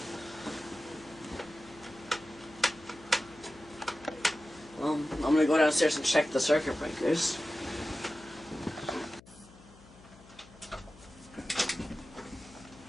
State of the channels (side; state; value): left; noise; hum, 22 dB below the sound